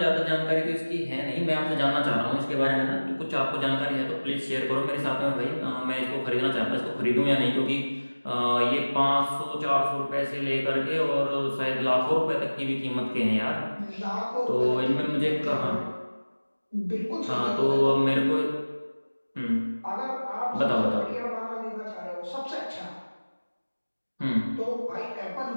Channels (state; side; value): inverted; both; correlation -1.00